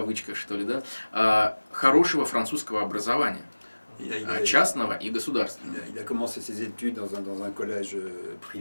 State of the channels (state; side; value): inverted; both; correlation -1.00